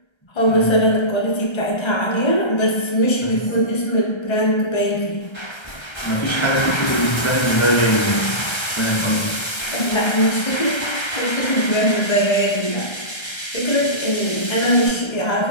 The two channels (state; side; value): late; right; 1.3 ms